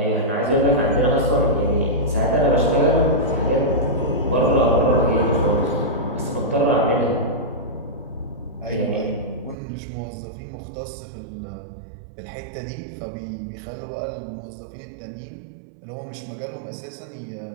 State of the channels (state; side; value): drops out; left; at 9.6 s